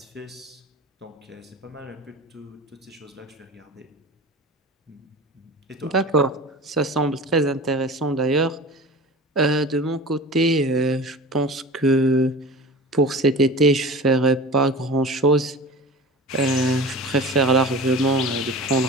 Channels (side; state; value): both; normal; correlation 0.36